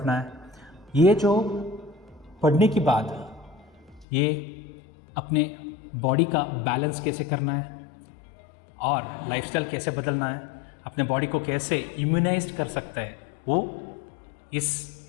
है। ये जो पढ़ने के बाद ये अपने बॉडी का बैलेंस कैसे करना है और लाइफस्टाइल कैसे बदलना है, अपने बॉडी को कैसे इम्यूनाइज्ड कर सकता है, वो इस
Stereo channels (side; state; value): right; drops out; at 4.0 s